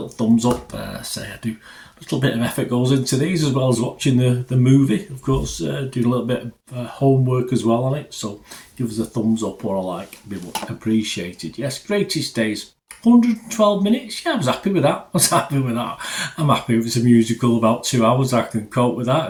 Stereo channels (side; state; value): both; identical; correlation 1.00